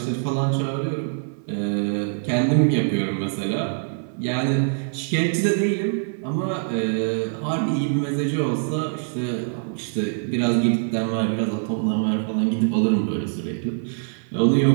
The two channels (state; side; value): silent; left; 55 dB below the other